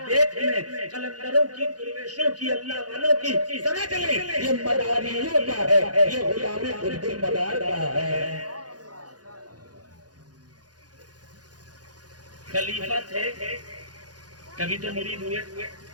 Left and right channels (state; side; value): late; left; 0.69 ms